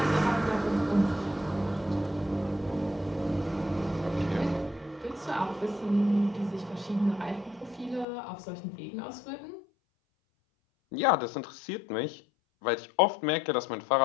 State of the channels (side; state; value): right; drops out; at 8.1 s